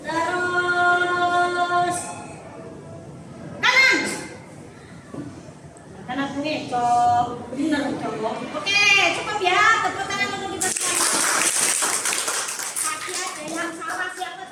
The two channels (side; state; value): both; identical; correlation 1.00